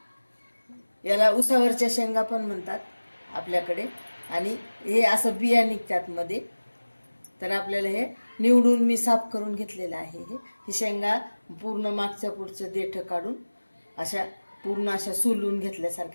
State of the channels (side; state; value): both; inverted; correlation -1.00